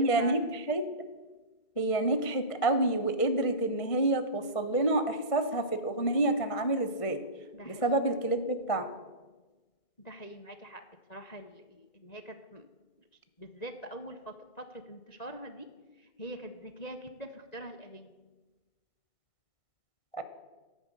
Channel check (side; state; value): right; late; 1.6 ms